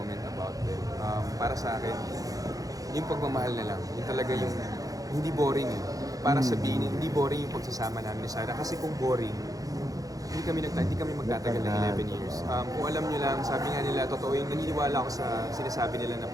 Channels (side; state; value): left; late; 0.17 ms